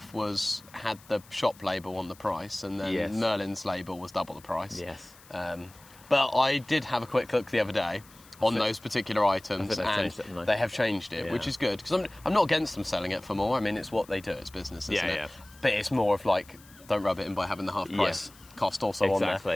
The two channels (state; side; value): noise; left; hiss, 24 dB below the sound